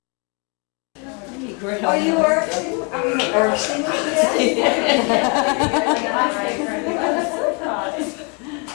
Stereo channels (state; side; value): quieter; right; 33.6 dB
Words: Oh, you were? Irksing?